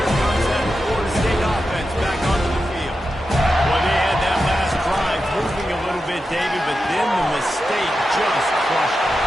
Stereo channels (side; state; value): both; normal; correlation 0.90